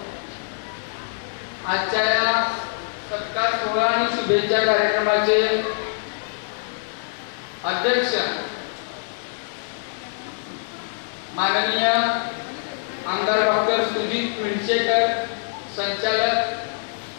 आजच्या या सत्कार सोहळा आणि शुभेच्छा कार्यक्रमाचे अध्यक्ष माननीय आमदार डॉक्टर सुजित मिरचेकर, संचालक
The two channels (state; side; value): silent; right; 63 dB below the other